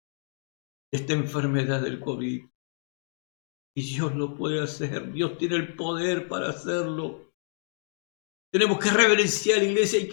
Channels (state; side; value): silent; right; digital silence